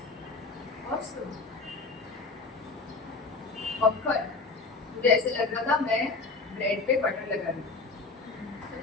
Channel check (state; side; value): quieter; right; 4.0 dB